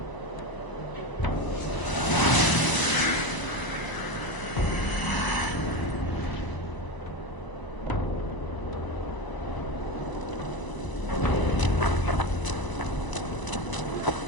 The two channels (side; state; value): right; late; 1.0 ms